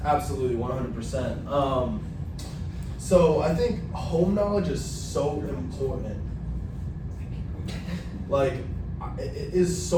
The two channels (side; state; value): both; identical; correlation 1.00